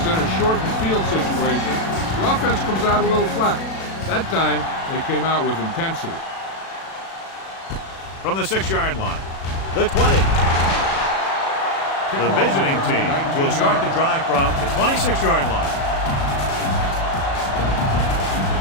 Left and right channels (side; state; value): right; late; 36 ms